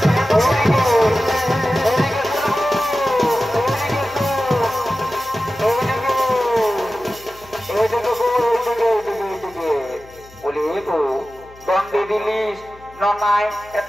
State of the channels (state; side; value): noise; left; hum, 24 dB below the sound